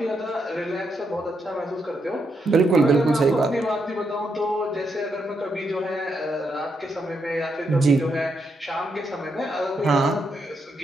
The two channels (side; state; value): both; normal; correlation 0.80